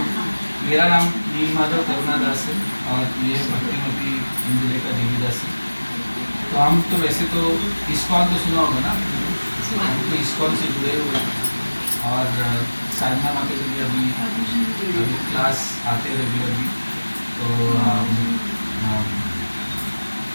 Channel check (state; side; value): inverted; both; correlation -1.00